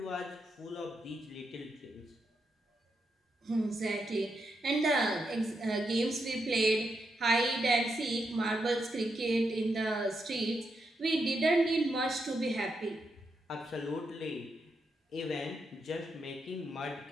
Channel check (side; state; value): both; normal; correlation 0.83